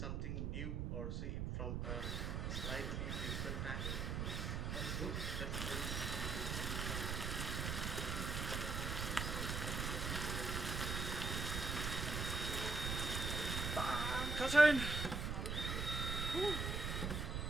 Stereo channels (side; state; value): right; noise; rumble, 1 dB below the sound